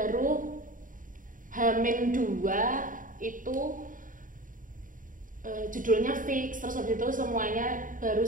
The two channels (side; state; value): left; late; 0.39 ms